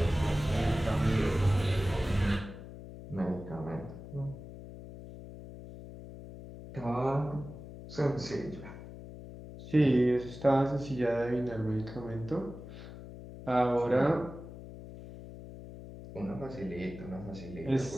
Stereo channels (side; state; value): left; noise; hum, 13 dB below the sound